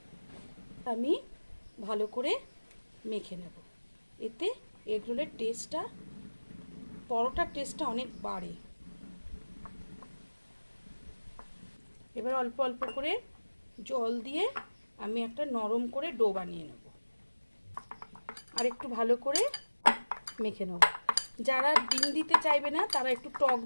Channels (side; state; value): both; inverted; correlation -1.00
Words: আমি ভালো করে মেখে নেব। এতে এগরোলের টেস্টটা, পরোটার টেস্টটা অনেক বাড়ে। এবার অল্প অল্প করে জল দিয়ে আমি একটা নরম করে ডো বানিয়ে নেব আর একটু ভালো করে মেখে নেব। যারা ডিম দিতে চাইবে না তারা একটু টক